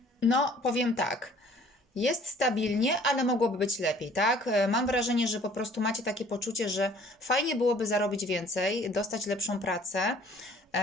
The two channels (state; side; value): normal; both; correlation 0.54